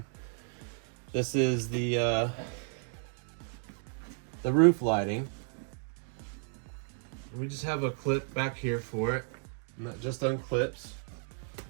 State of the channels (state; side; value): silent; left; 56 dB below the other